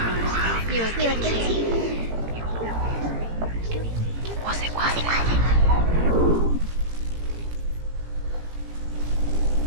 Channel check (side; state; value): left; late; 17 ms